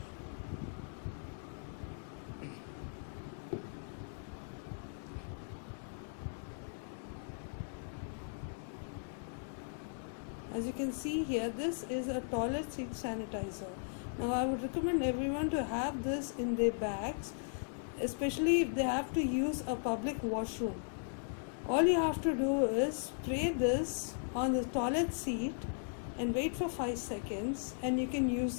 As you can see here, this is a toilet seat sanitizer. Now I would recommend everyone to have this in their bags, especially if they have to use a public washroom. All you have to do is spray this on the toilet seat and wait for 5 seconds and you can use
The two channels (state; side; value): silent; right; digital silence